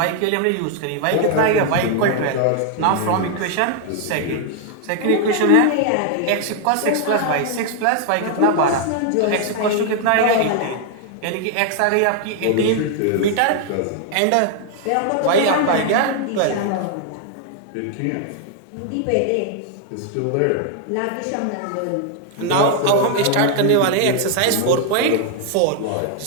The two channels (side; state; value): both; different; correlation 0.00